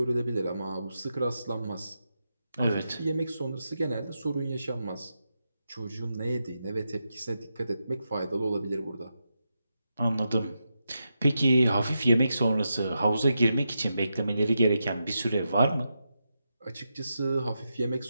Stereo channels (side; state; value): both; inverted; correlation -0.87